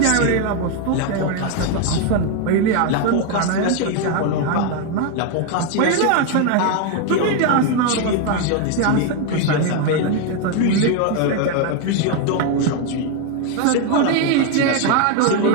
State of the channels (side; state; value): both; different; correlation 0.01